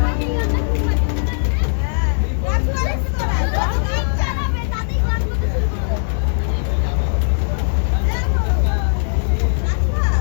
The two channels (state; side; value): silent; right; digital silence